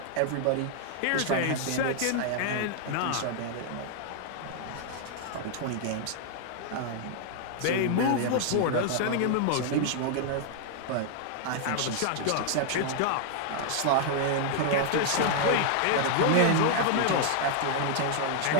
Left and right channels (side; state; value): both; different; correlation 0.00